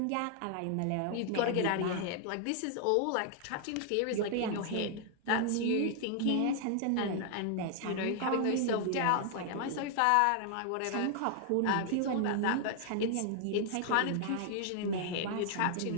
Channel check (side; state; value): both; different; correlation 0.00